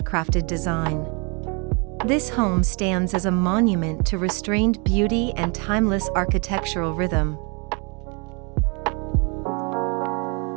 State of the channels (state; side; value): quieter; left; 32.8 dB